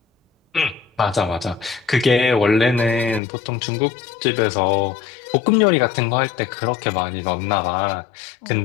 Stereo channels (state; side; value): drops out; right; at 3.2 s